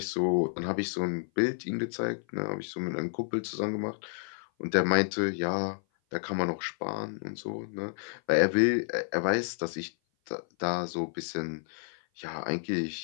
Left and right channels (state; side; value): silent; right; 56 dB below the other